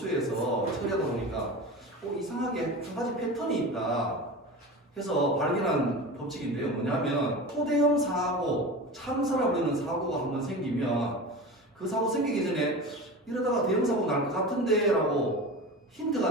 처리하다 보니까 이상하게 한 가지 패턴이 있다 해서 발견한 법칙인데요. 뭐냐면 초대형 사고, 참사라 부르는 사고가 한번 생기면 그 사고 생기기 전에 이러다가 대형 사고 날 것 같은데 라고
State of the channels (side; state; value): both; normal; correlation 0.31